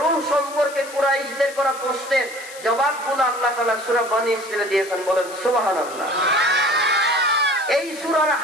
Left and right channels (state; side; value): noise; left; hiss, 16 dB below the sound